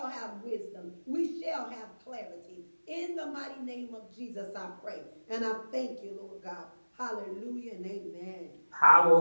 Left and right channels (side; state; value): both; inverted; correlation -1.00